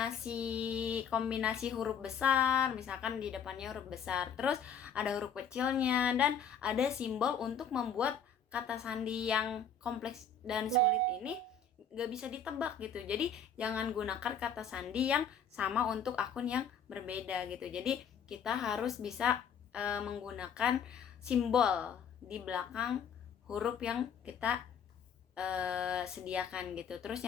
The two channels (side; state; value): right; quieter; 5.9 dB